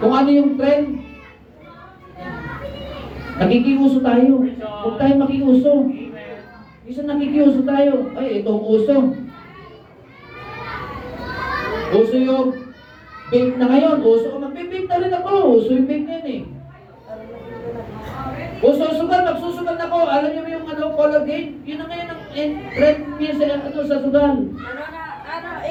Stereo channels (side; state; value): both; identical; correlation 1.00